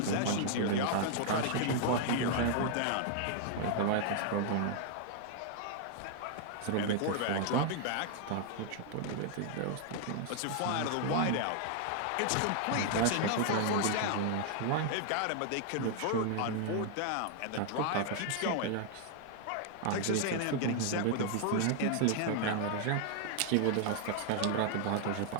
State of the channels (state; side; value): different; both; correlation 0.00